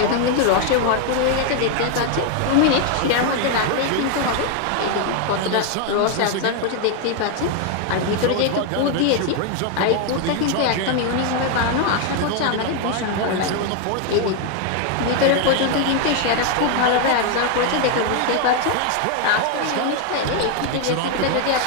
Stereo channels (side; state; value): both; different; correlation 0.01